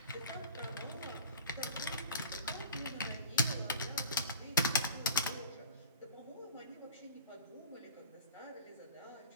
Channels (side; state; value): both; inverted; correlation -0.39